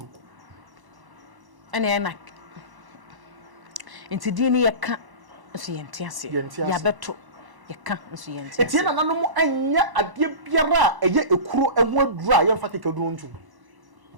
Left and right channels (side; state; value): left; late; 1.0 ms